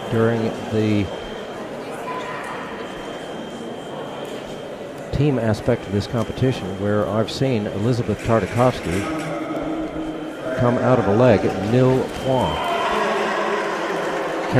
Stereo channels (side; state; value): both; identical; correlation 1.00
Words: during the team aspect of this competition where I've seen Elizabeth Tartakovsky come out of a leg at nil point.